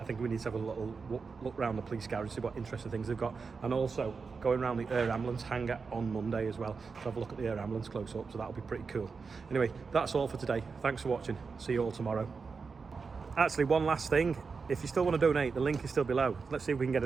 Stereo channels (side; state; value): left; quieter; 5.0 dB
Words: think we need to have a little look around the police garage, see what interesting things they've got, and also going around the air ambulance hangar on Monday as well to have a look at the air ambulance close up, so that'll be pretty cool. Anyway, that's all for today. Thanks for watching. See you all tomorrow. Actually, one last thing. If you still want to donate, the link is still below. Let's see if we can get